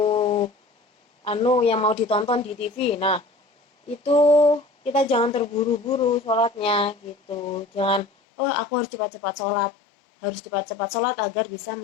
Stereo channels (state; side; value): drops out; right; at 8.1 s